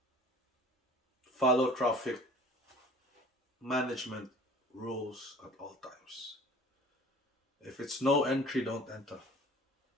follow traffic management rules at all times. If it's no entry, don't enter.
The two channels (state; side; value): normal; both; correlation 0.47